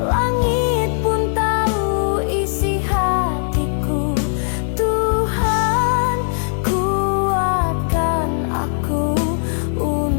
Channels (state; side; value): silent; right; 65 dB below the other